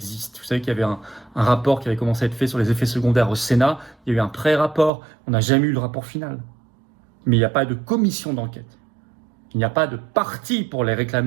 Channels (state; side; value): drops out; left; at 4.9 s